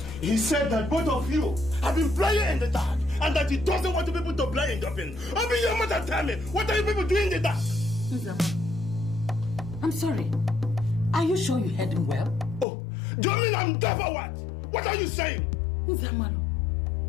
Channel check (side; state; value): right; drops out; at 12.7 s